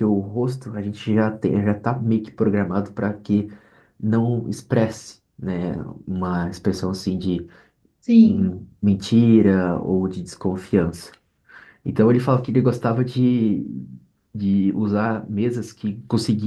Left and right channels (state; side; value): identical; both; correlation 1.00